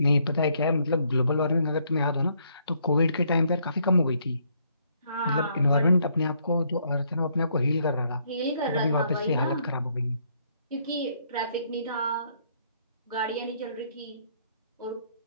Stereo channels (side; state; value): both; inverted; correlation -0.70